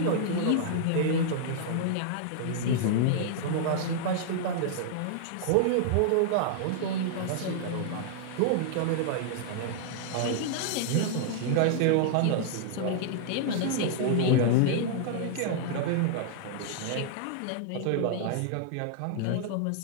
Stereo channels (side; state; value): both; different; correlation -0.01